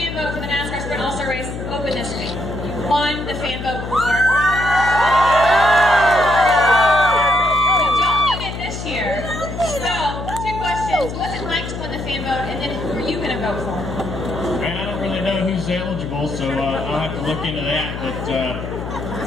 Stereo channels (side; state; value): left; noise; hum, 7 dB below the sound